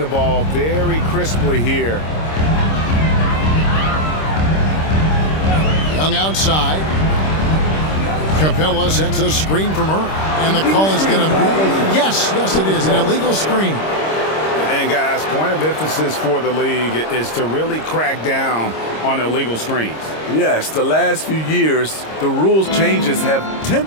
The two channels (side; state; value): right; late; 26 ms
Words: ball very crisply here. Young outside. Capella sets a screen from her. And the call is going to be, yes, it is, an illegal screen. And guys, point of emphasis for the league is to really crack down on illegal screens. Yes, the last few years, the rules changes have